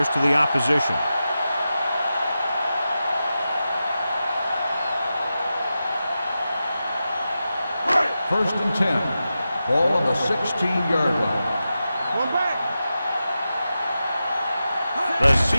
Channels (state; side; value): inverted; both; correlation -0.91